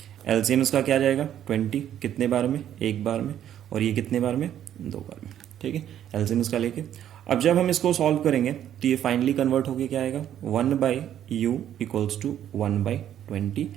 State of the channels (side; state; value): left; quieter; 10.7 dB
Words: एलसीएम इसका क्या जाएगा? 20 कितने बार में? एक बार में। और ये कितने बार में? 2 बार में, ठीक है। एलसीएम इसका लेके अब जब हम इसको सॉल्व करेंगे तो ये फाइनली कन्वर्ट होके क्या आएगा? 1/u इक्वल्स टू 1/20,